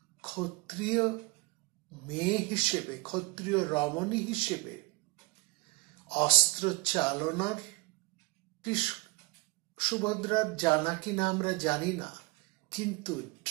ক্ষত্রিয় মেয়ে হিসেবে, ক্ষত্রিয় রমণী হিসেবে অস্ত্র চালনার সুভদ্রার জানা কিনা আমরা জানি না, কিন্তু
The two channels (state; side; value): quieter; left; 24.9 dB